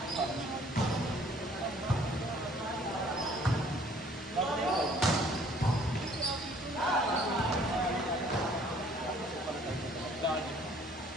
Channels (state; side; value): normal; both; correlation 0.57